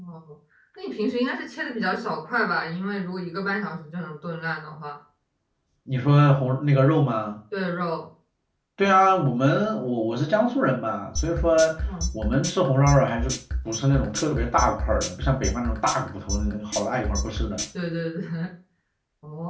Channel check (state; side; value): identical; both; correlation 1.00